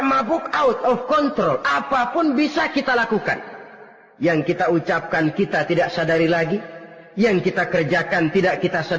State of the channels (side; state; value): both; identical; correlation 1.00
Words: mabuk, out of control, apapun bisa kita lakukan. Yang kita ucapkan kita tidak sadari lagi, yang kita kerjakan tidak kita